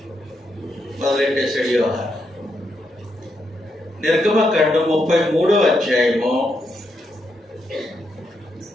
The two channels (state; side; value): normal; both; correlation 0.81